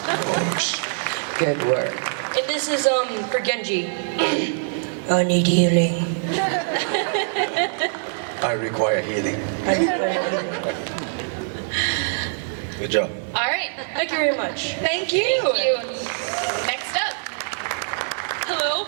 Good work. And this is for Genji. I need healing. I require healing. Good job. All right. Thank you very much. Thank you. Thank you. Next up. Hello.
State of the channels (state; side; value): silent; left; 56 dB below the other